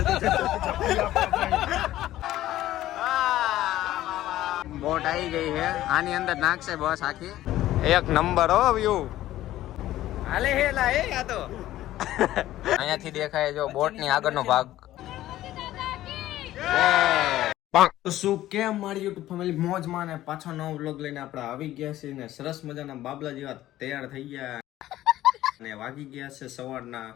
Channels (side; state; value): right; quieter; 14.4 dB